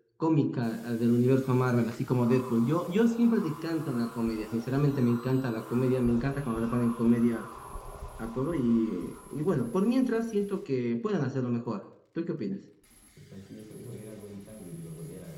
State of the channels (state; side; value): identical; both; correlation 1.00